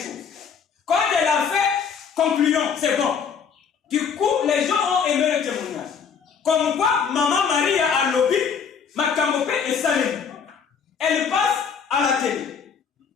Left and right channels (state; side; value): quieter; right; 6.6 dB